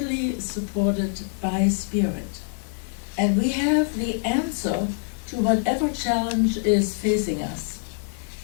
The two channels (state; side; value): silent; right; 62 dB below the other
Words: supported by Spirit. And we have the answer to whatever challenge is facing us.